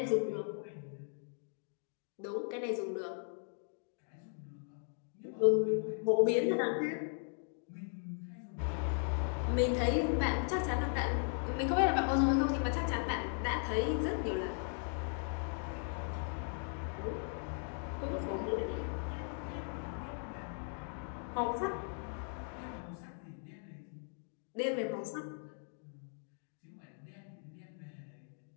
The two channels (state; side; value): silent; right; 53 dB below the other